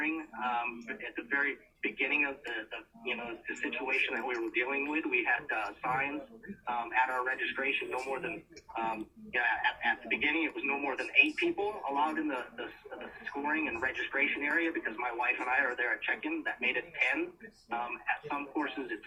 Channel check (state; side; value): identical; both; correlation 1.00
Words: At the very beginning of the situation that we were dealing with, we had signs at our registration, no more than at the beginning it was no more than 8 people allowed in the scoring and registration area, because my wife and I are there at check-in. That made it 10. At some courses it's